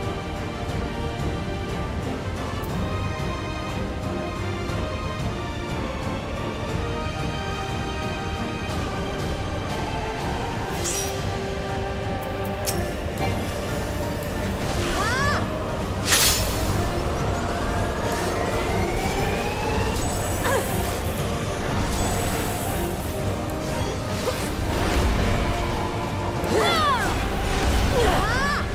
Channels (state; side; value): identical; both; correlation 1.00